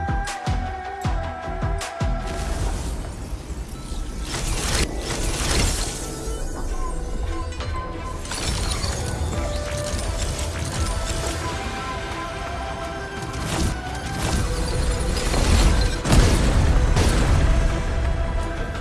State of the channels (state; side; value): identical; both; correlation 1.00